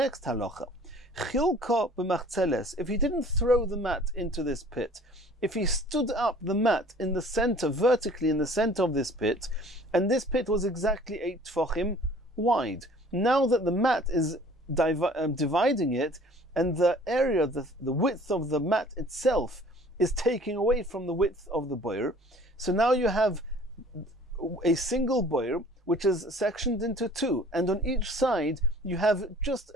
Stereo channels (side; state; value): both; normal; correlation 0.51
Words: halacha. Chilka b'machzeles, if he didn't throw the mat into this pit, if he stood up the mat in the center, vertically in the center of this pit, and this pit was exactly 8 tfachim wide. Now that the mat is dividing it, and the area, the width of the mat itself is taking away from the width of the boir, so now you have a single boir which is sectioned into 2, and on each side you have just